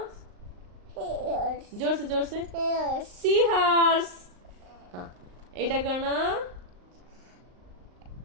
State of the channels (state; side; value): late; left; 38 ms